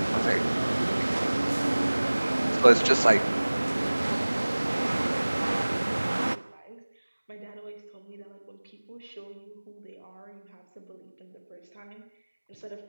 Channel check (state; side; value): inverted; both; correlation -1.00